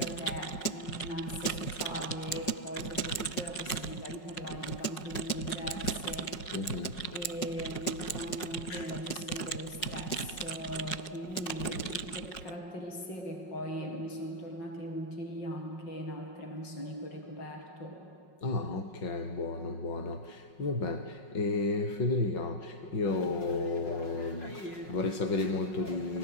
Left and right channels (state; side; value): late; right; 5.5 ms